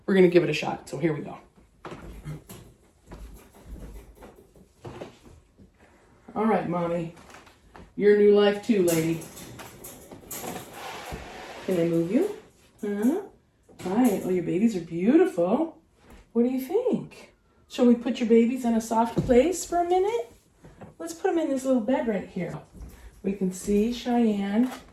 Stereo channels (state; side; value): identical; both; correlation 1.00